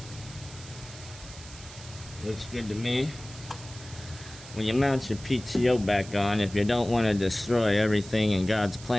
Looks good to me. When you mount your PTO back on, if you don't want to destroy everything in God's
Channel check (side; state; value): right; noise; hiss, 16 dB below the sound